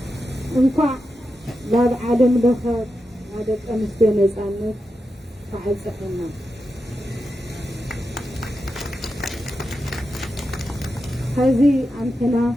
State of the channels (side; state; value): both; normal; correlation 0.88